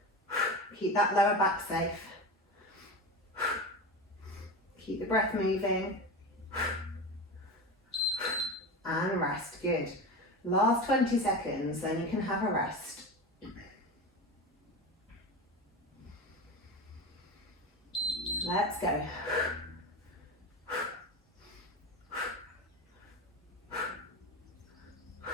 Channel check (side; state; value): both; normal; correlation 0.25